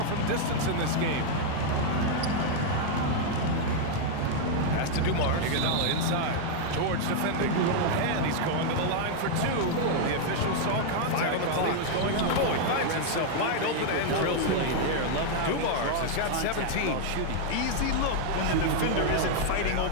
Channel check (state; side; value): different; both; correlation 0.00